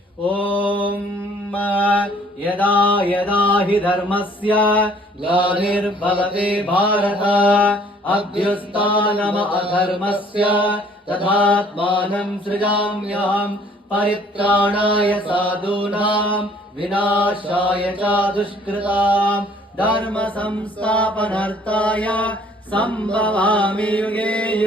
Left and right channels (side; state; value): both; normal; correlation 0.58